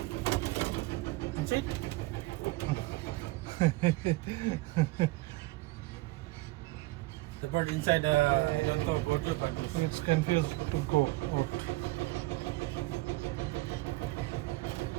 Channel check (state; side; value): quieter; left; 20.8 dB